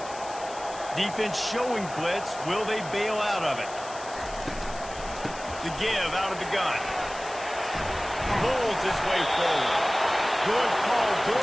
Defense showing blitz. Will they bail out of it? The give out of the gun. Pulls his way forward. Good call,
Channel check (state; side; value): noise; left; hiss, 15 dB below the sound